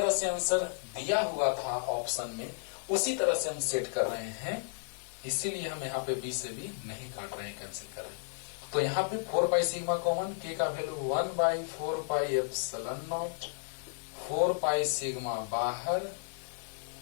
से आंसर दिया हुआ था ऑप्शन में उसी तरह से हम सेट कर रहे हैं, इसीलिए हम यहाँ पे बी से भी नहीं काट रहे हैं, कैंसिल कर रहे हैं। तो यहाँ पे 4 पाई सिग्मा कॉमन, के का value 1 by 4 pi epsilon naught, 4 pi sigma बाहर।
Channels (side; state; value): right; silent; 56 dB below the other